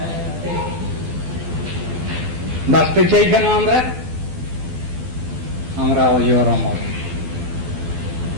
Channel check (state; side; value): late; left; 12 ms